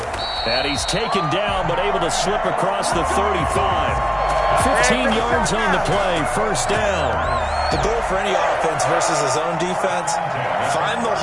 And he's taken down but able to slip across the 35. 15 yards on the play, first down. The goal for any offense versus his own defense, find the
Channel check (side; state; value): both; identical; correlation 1.00